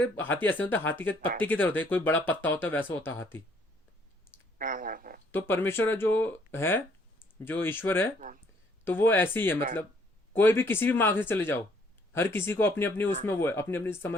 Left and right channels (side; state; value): both; normal; correlation 0.64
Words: हाथी ऐसे होता है, हाथी के पत्ते की तरह होते हैं, कोई बड़ा पत्ता होता है वैसा होता है हाथी। तो परमेश्वर जो है, जो ईश्वर है, तो वो ऐसे ही है। मतलब कोई भी किसी भी मार्ग से चले जाओ, हर किसी को अपनी अपनी उसमें वो है, अपनी अपनी